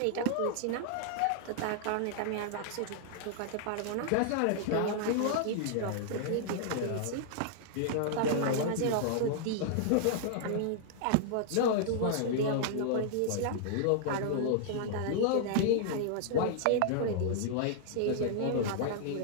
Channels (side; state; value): both; different; correlation -0.01